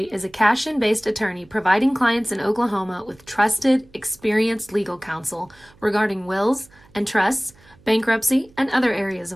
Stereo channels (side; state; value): right; noise; hum, 28 dB below the sound